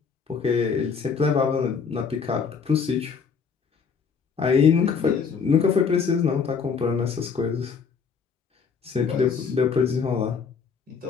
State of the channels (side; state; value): right; quieter; 5.9 dB